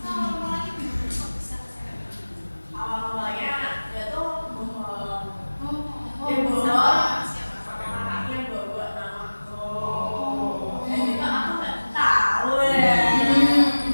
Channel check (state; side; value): inverted; both; correlation -1.00